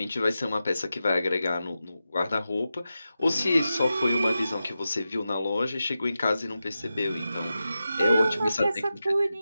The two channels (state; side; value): inverted; both; correlation -0.91